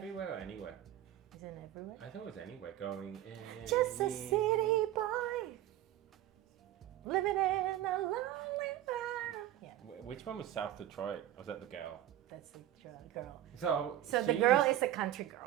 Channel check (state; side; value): quieter; left; 12.9 dB